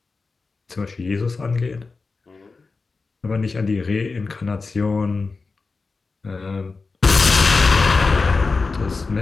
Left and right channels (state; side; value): quieter; right; 4.1 dB